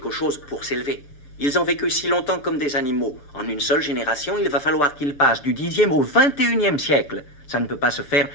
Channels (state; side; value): late; right; 6.9 ms